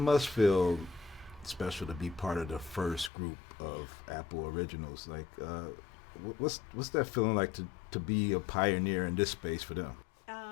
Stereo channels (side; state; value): right; drops out; at 3.1 s